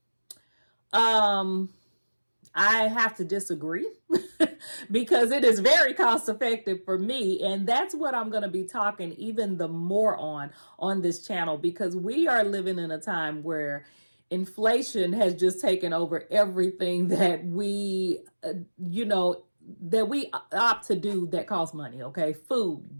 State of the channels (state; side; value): inverted; both; correlation -1.00